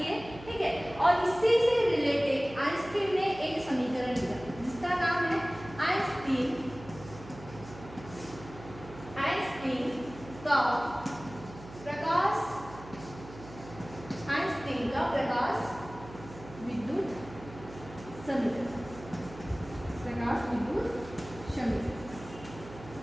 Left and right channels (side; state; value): right; noise; hum, 16 dB below the sound